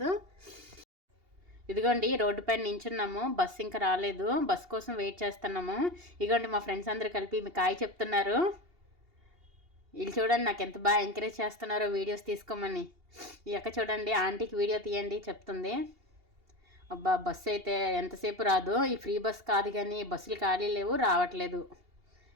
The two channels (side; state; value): left; late; 2.8 ms